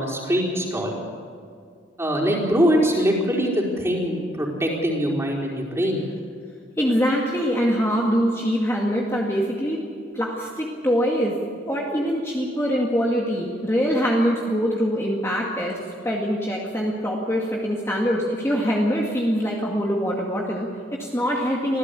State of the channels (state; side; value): normal; both; correlation 0.73